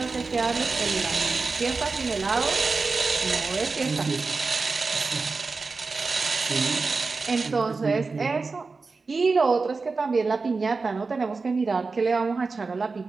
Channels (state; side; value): quieter; left; 4.2 dB